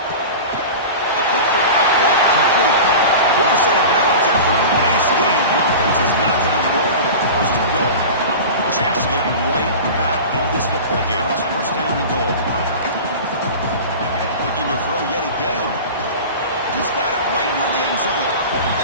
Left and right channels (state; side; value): inverted; both; correlation -0.32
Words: A quick throw out left complete. Forced out of bounds after a nice gain. The offense is knocking on the door with a first and goal. A chance to get right back into this football game. It's first down and goal. Looking to throw yet again. He's got it right near the end zone.